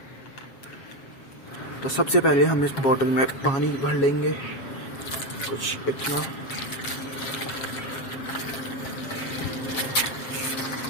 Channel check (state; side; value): late; right; 7.3 ms